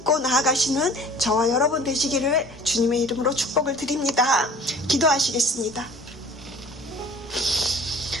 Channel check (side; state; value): both; normal; correlation 0.47